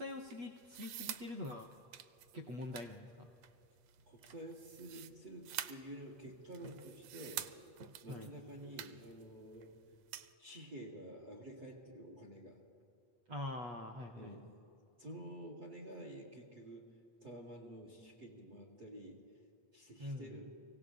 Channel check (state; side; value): late; left; 8.4 ms